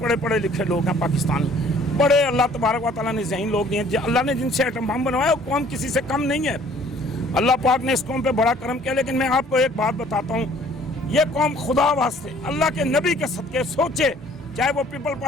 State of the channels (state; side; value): normal; both; correlation 0.56